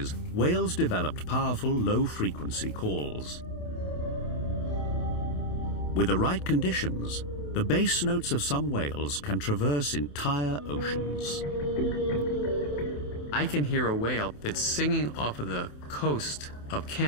whales developed powerful low-frequency calls. With the right conditions, the bass notes of some whales can traverse entire oceans. I can hear a whale that's singing off of the coast of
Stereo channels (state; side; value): late; right; 28 ms